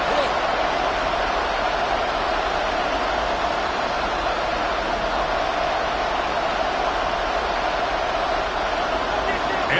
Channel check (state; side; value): identical; both; correlation 1.00